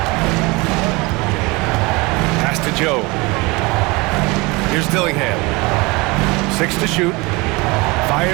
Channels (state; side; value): quieter; left; 25.0 dB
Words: Pass to Joe. Here's Dillingham. 6 to shoot.